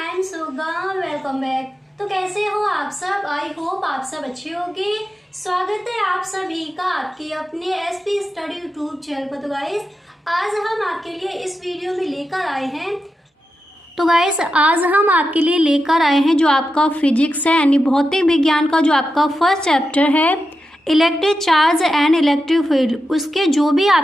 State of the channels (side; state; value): both; normal; correlation 0.89